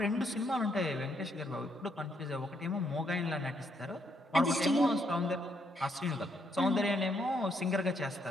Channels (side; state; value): both; normal; correlation 0.74